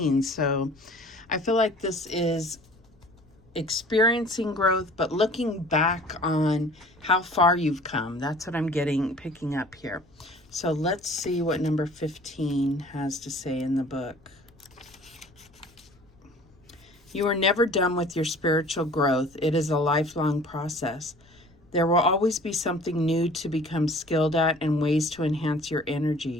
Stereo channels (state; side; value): noise; left; rumble, 29 dB below the sound